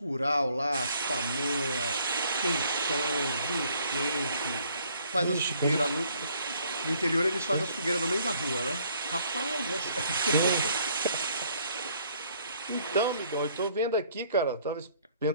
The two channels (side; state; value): both; inverted; correlation -0.63